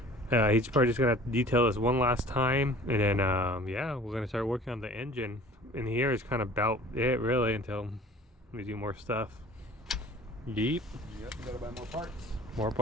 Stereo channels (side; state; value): both; normal; correlation 0.47